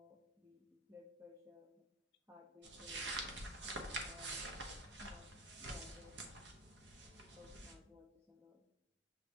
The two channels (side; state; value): both; normal; correlation 0.23